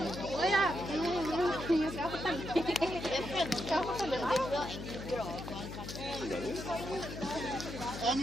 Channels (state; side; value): noise; left; hum, 9 dB below the sound